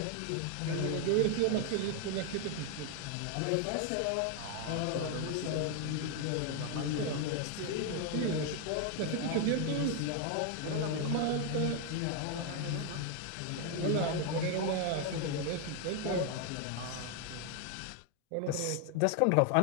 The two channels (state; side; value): different; both; correlation 0.01